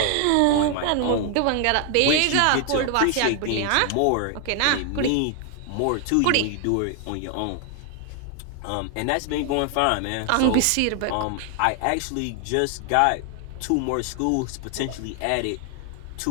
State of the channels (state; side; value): different; both; correlation 0.00